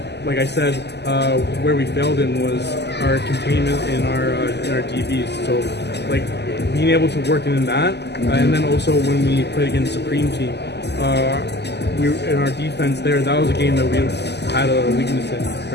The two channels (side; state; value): right; late; 0.50 ms